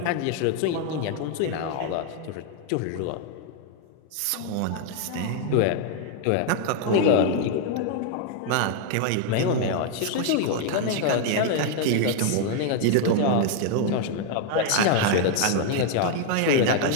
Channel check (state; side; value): different; both; correlation 0.00